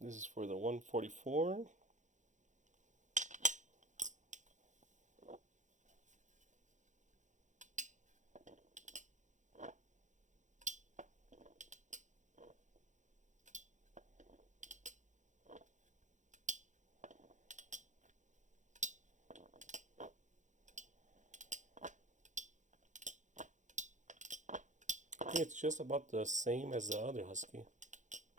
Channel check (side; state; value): left; late; 0.35 ms